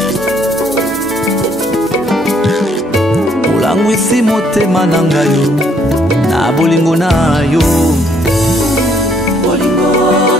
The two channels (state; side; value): normal; both; correlation 0.67